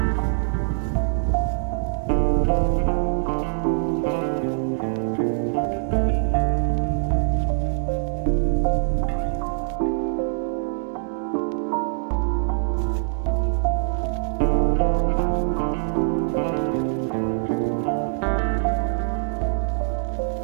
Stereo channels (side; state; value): left; silent; digital silence